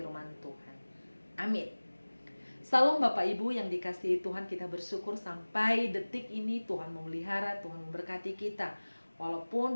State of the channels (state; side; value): inverted; both; correlation -1.00